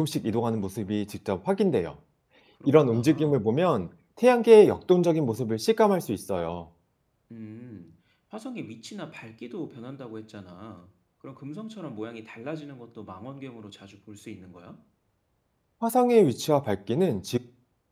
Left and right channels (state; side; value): identical; both; correlation 1.00